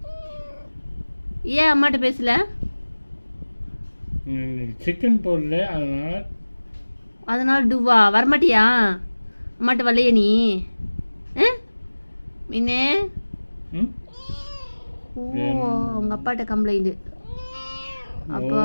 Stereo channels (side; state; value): both; inverted; correlation -1.00